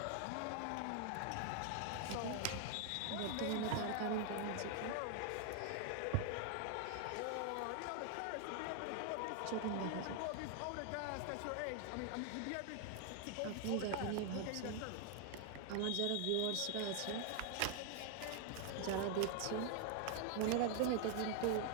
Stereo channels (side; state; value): both; different; correlation 0.00